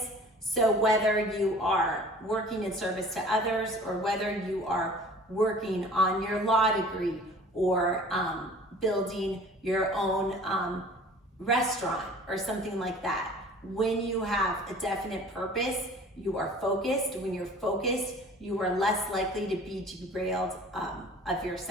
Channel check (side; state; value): both; normal; correlation 0.47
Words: So whether you are working in service to others, or whether you are working on your law degree, or building your own restaurant or something like that, when you have a definite purpose, you are focused. When you're focused, you are less likely to be derailed of your